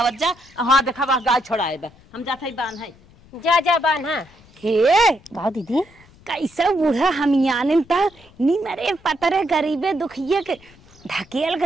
जा। हाँ देखा बा गाय छोड़ाए बा, हम जात है बान है जा बान। हाँ हे का दीदी कैसे बूढ़ा हम यानिन ता नी मरे पतरे गरीबे दुखिए के ढकेल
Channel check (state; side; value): noise; left; rumble, 26 dB below the sound